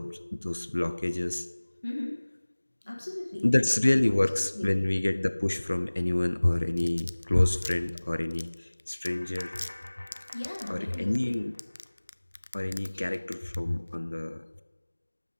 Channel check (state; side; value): inverted; both; correlation -1.00